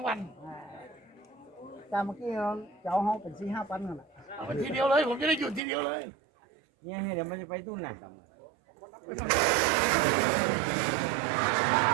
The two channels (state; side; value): drops out; left; at 5.6 s